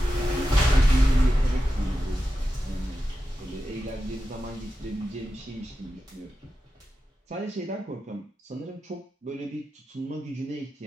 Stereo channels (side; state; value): both; normal; correlation 0.91